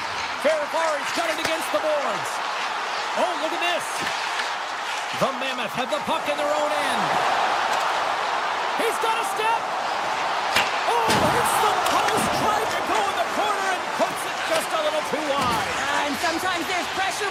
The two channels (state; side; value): identical; both; correlation 1.00